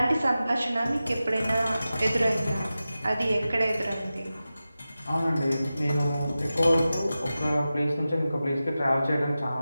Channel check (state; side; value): inverted; both; correlation -0.94